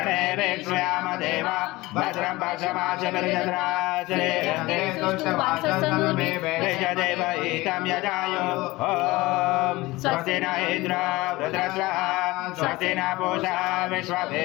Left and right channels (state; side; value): quieter; right; 20.4 dB